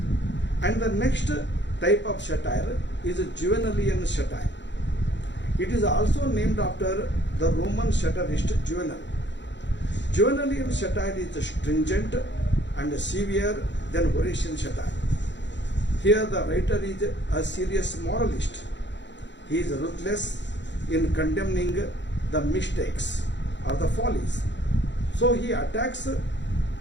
And the next type of satire is Juvenalian satire. It is also named after the Roman satirist Juvenal. Juvenalian satire is stringent and severe than Horatian satire. Here the writer is a serious moralist. He is ruthless in condemning the mistakes or the follies. So he attacks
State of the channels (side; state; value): right; late; 0.52 ms